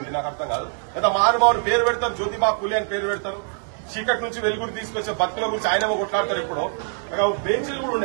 నాకు అర్థం కాదు. లేదా మహానుభావుడు పేరు పెడతారు, జ్యోతిబా పులి అని పేరు పెడతారు. చీకటి నుంచి వెలుగుడు తీసుకొచ్చే భక్తుల గురించి ఆయనేమో కొట్లాడతారు. ఇప్పుడు బెంచీలు కూడా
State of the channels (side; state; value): left; silent; 63 dB below the other